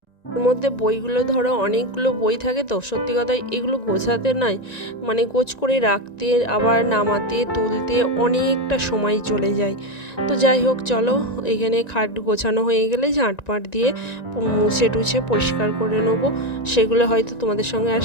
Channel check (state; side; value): late; right; 1.9 ms